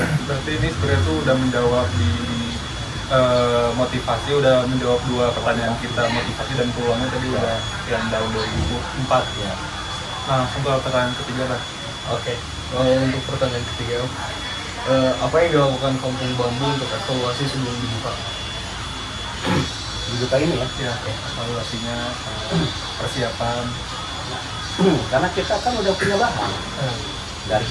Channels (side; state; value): both; identical; correlation 1.00